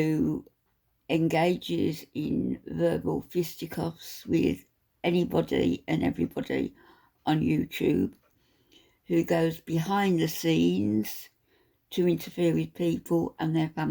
engages in verbal fisticuffs with anybody and everybody on YouTube, who goes behind the scenes to interfere with people and their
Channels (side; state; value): both; identical; correlation 1.00